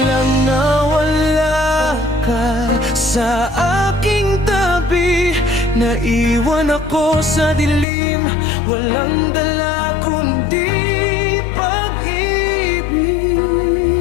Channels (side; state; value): right; drops out; at 7.9 s